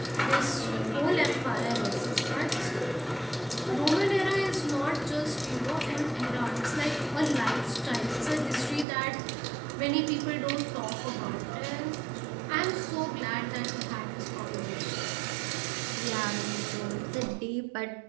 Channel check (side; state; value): left; drops out; at 8.8 s